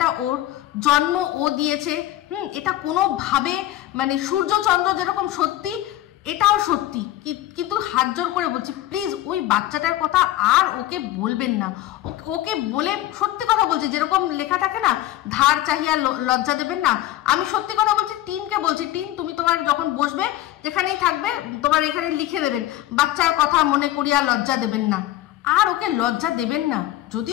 ওর জন্ম ও দিয়েছে, এটা কোনোভাবে মানে সূর্য চন্দ্র যেরকম সত্যি, এটাও সত্যি, কিন্তু হাত জোর করে বলছি, প্লিজ ওই বাচ্চাটার কথা আর ওকে বলবেন না। ওকে বলে, সত্যি কথা বলছি, যেরকম লেখা থাকে না, ধার চাহিয়া লজ্জা দেবেন না, আমি সত্যি কথা বলছি, টিনকে বলছি, টিন তুমি তোমার যখন বসবে, যেখানেই থাকবে, তোমার এখানে লিখে দেবেন, বাচ্চার কথা মনে করিয়া লজ্জা দেবেন না, আর ওকে লজ্জা দেবেন না।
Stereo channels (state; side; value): quieter; right; 14.5 dB